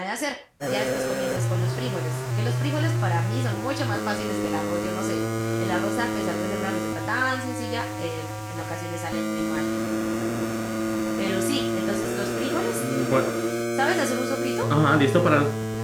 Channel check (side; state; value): both; identical; correlation 1.00